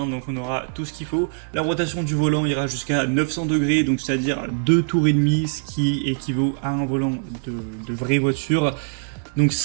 Donc on aura tout ce qu'il faut. La rotation du volant ira jusqu'à 900 degrés, donc c'est-à-dire 2 tours et demi, ce qui équivaut à un volant de vraie voiture. Donc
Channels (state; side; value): silent; left; digital silence